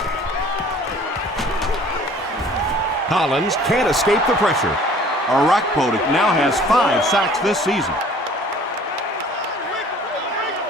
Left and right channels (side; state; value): both; normal; correlation 0.51